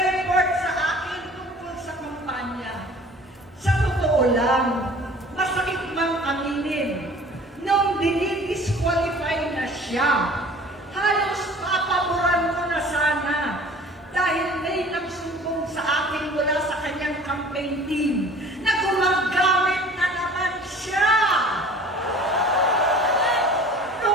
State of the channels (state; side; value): normal; both; correlation 0.47